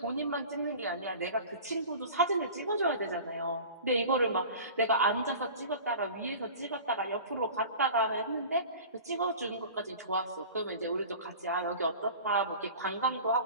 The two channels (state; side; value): inverted; both; correlation -0.38